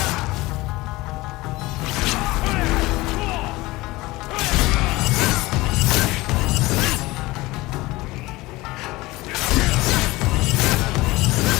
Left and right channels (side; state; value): right; quieter; 20.4 dB